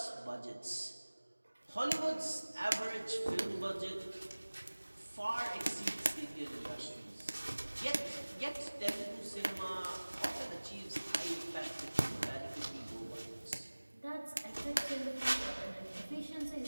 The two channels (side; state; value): both; inverted; correlation -1.00